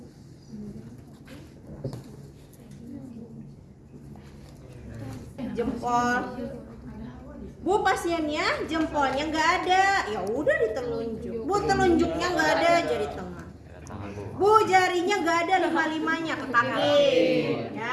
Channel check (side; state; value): both; identical; correlation 1.00